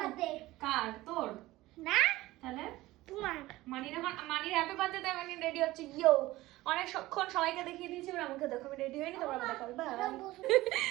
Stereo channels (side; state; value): left; quieter; 17.9 dB